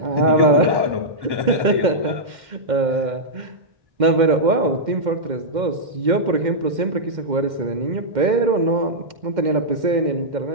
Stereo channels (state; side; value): late; left; 2.1 ms